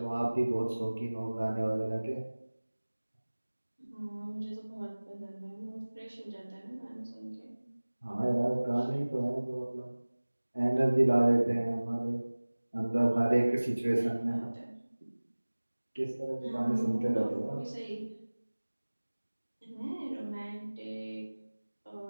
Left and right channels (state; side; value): inverted; both; correlation -1.00